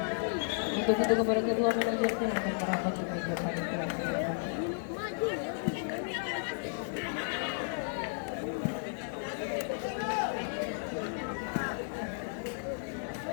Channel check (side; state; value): right; silent; digital silence